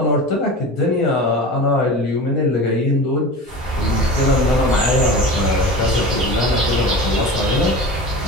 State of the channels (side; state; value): both; normal; correlation 0.32